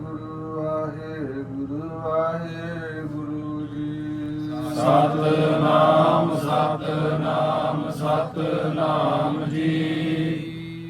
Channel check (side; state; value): both; identical; correlation 1.00